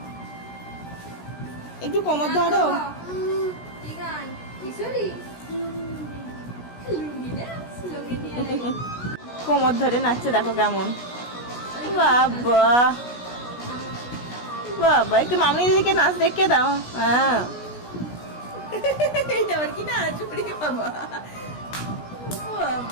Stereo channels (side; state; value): right; late; 16 ms